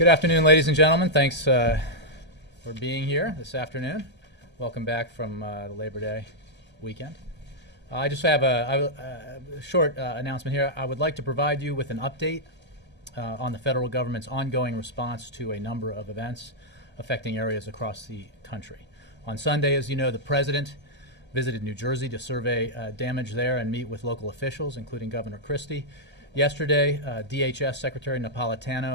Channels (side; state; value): left; late; 1.3 ms